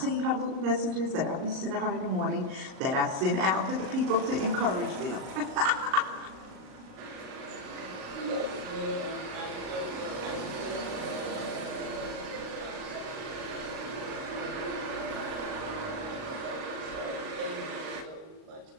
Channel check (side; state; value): left; late; 38 ms